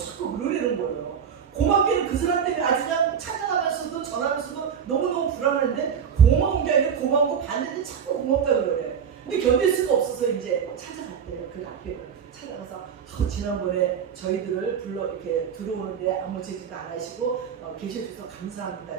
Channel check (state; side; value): quieter; left; 7.5 dB